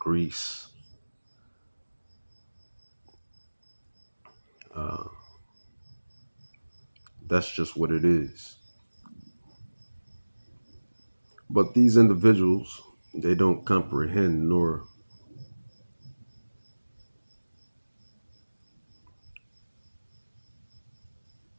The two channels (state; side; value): inverted; both; correlation -1.00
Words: That's just what it is. But these individuals, they don't comprehend nor